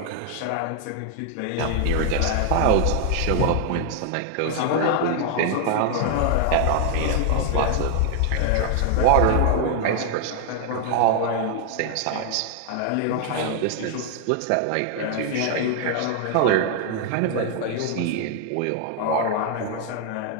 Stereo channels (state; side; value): different; both; correlation 0.00